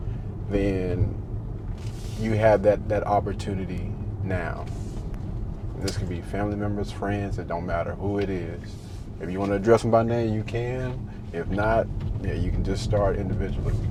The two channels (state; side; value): identical; both; correlation 1.00